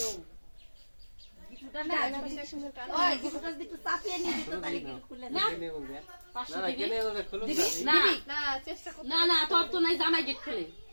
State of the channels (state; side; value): inverted; both; correlation -1.00